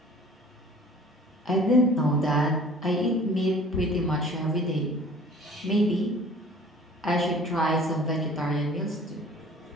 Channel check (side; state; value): both; normal; correlation 0.48